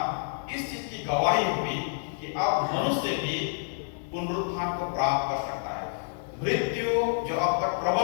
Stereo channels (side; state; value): right; silent; digital silence